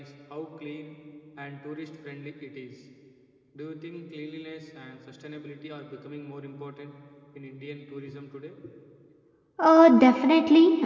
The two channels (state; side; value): identical; both; correlation 1.00